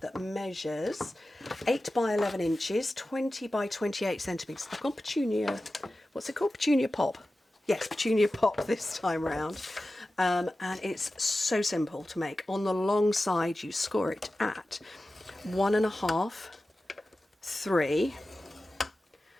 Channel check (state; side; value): normal; both; correlation 0.94